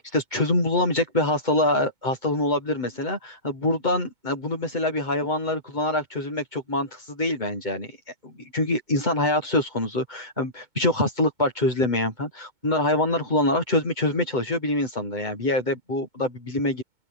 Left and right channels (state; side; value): late; left; 2.2 ms